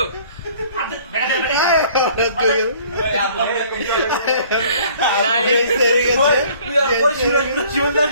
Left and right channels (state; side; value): inverted; both; correlation -0.55